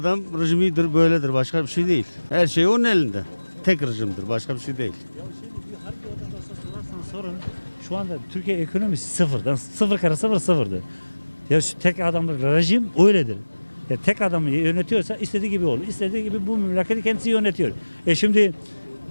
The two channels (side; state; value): both; inverted; correlation -1.00